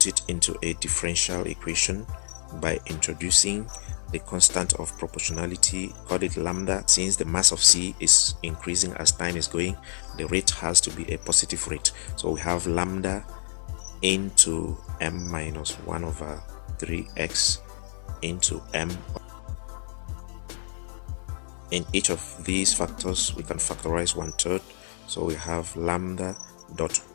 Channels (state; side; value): silent; right; 60 dB below the other